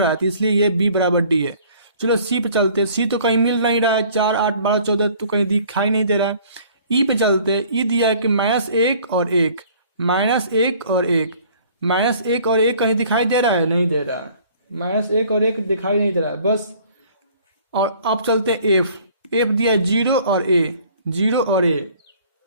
है, तो इसलिए ये B बराबर D है। चलो C पे चलते हैं। C तो कहीं मिल नहीं रहा है, 4 8 12 14 तो कहीं दिखाई नहीं दे रहा है। E पे चलते हैं। E दिया है कि -1 और 1, -1 और 1, -1 और 1 कहीं दिखाई दे रहा है? नहीं दे रहा है। -1 और 1 दिखाई नहीं दे रहा है बस। और अब चलते हैं F। F दिया है 0 और A, 0 और A,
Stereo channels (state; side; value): inverted; both; correlation -0.54